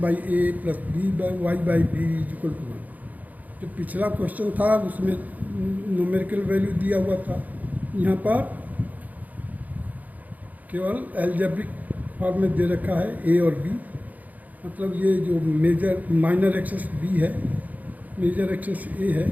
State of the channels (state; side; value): late; left; 0.079 ms